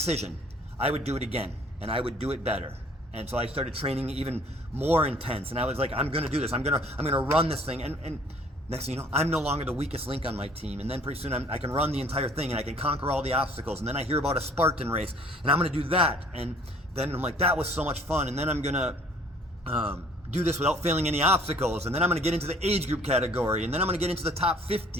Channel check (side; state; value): both; normal; correlation 0.55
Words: I would do it again, and I would do it better. And so I started training even more intense, and I was like, I'm going to do this. I'm going to run this thing. And next thing you know, I'm no longer the weakest link on my team. And then pretty soon I can run the entire thing, and I can conquer all the obstacles. And then I hear about a Spartan race, and I'm going to do that. And then I'm like, that was so much fun. And then I'm going to do this without failing any obstacles. And then I'm going to get into the age group category. And then I'm going to get into the top